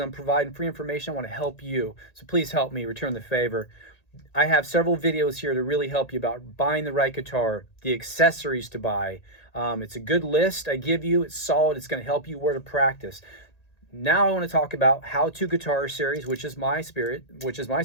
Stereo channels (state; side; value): late; right; 1.8 ms